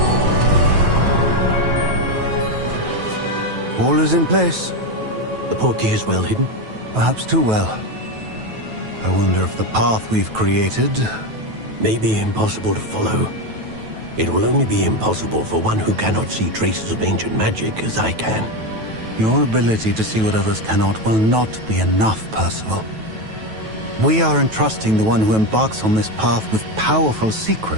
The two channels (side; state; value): left; late; 9.2 ms